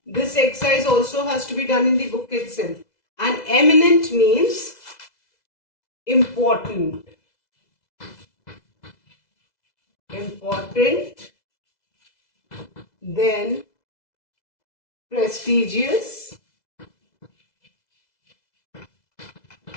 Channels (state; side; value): late; right; 2.0 ms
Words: This exercise also has to be done in the book itself. And eminent means important. Important. Then prestigious.